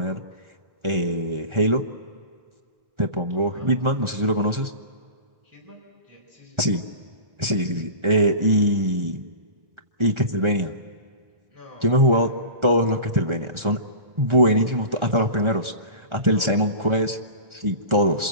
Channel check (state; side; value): late; left; 1.4 ms